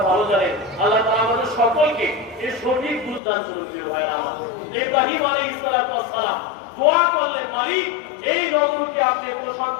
ভালো জানেন। আল্লাহ তাআলা আমাদের সকলকে এর সঠিক বুঝ দান করুন। প্রিয় ভাইরা আমার, ইব্রাহিম আলাইহিস সালাম দোয়া করলেন, মালিক এই নগরকে আপনি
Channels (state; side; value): drops out; right; at 3.2 s